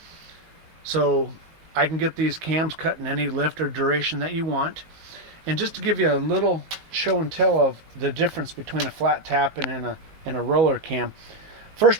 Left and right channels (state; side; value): late; left; 19 ms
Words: So I can get these cams cut in any lift or duration that you want. And just to give you a little show and tell of the difference between a flat tap and a roller cam.